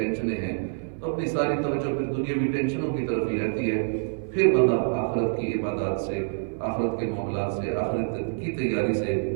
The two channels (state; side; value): silent; left; 61 dB below the other